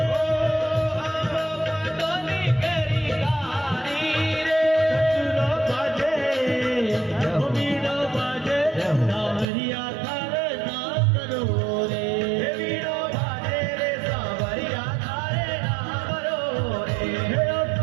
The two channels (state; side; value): drops out; left; at 9.5 s